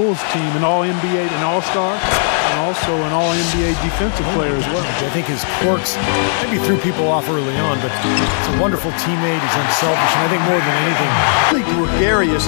team, an All-NBA and All-Star, and also an All-NBA defensive player as well. I think his quirks maybe threw people off early on, but he's a wonderful teammate. He's unselfish, and I think more than anything, really gregarious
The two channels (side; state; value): right; silent; digital silence